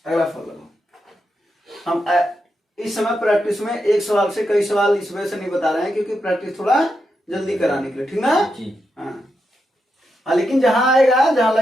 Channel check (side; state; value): both; normal; correlation 0.85